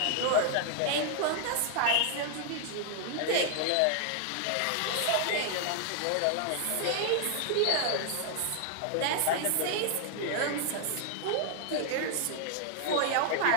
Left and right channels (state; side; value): different; both; correlation 0.00